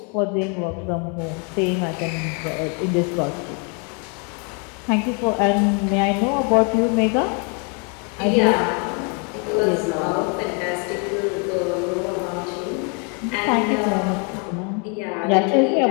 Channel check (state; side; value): quieter; right; 36.8 dB